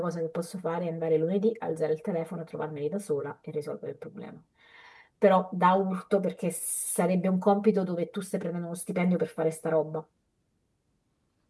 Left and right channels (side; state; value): both; identical; correlation 1.00